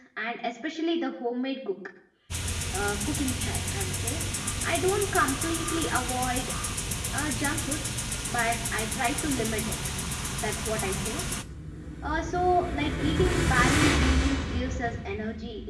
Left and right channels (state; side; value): identical; both; correlation 1.00